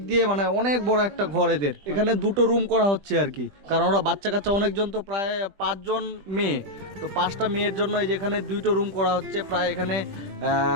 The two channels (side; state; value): left; late; 20 ms